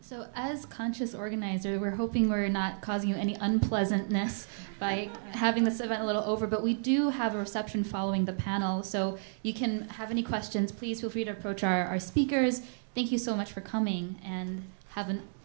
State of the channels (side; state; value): left; silent; digital silence